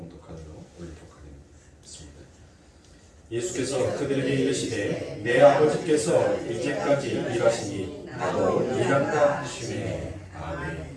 올리도록 하겠습니다. 예수께서 그들에게 이르시되 내 아버지께서 이제까지 일하시니 나도 일한다 하시매.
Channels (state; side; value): identical; both; correlation 1.00